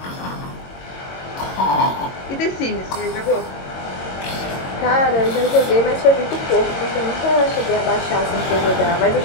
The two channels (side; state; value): right; late; 22 ms